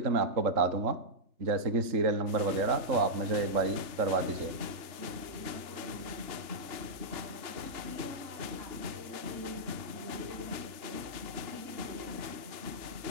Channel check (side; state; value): left; late; 3.4 ms